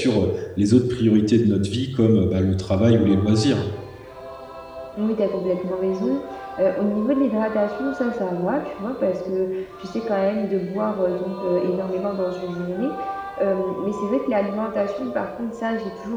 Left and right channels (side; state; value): both; identical; correlation 1.00